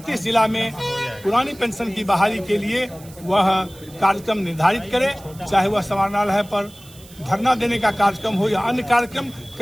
जिला में पुरानी पेंशन की बहाली के लिए वह कार्यक्रम निर्धारित करे, चाहे वह समाहरणालय पर धरना देने का कार्यक्रम हो या अन्य कार्यक्रम।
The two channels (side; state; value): right; noise; hiss, 22 dB below the sound